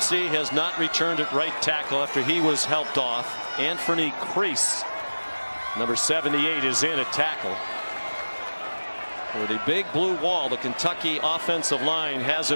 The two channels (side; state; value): both; inverted; correlation -1.00